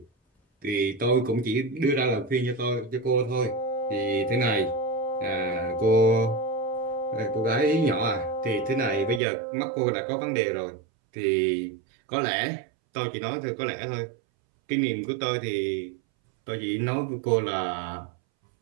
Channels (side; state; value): left; drops out; at 9.2 s